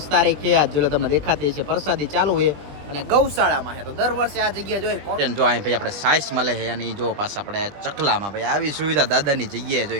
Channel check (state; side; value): late; left; 20 ms